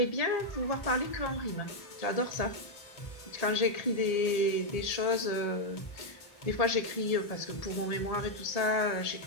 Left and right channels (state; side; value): late; right; 1.7 ms